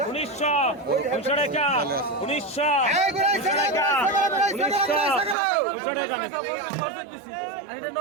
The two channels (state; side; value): drops out; left; at 5.4 s